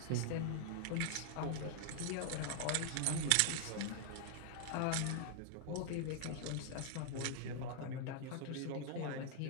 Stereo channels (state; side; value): different; both; correlation 0.00